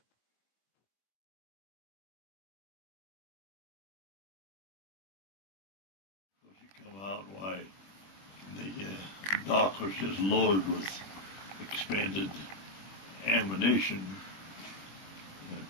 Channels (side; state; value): right; late; 21 ms